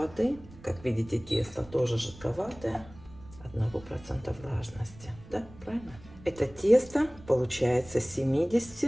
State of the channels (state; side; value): noise; right; rumble, 20 dB below the sound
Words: Как видите, тесто тоже жидковатое. 1% влажности. Да, правильно? Это тесто получается